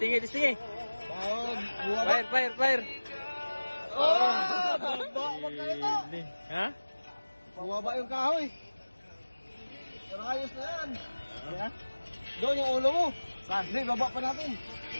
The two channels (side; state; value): both; inverted; correlation -1.00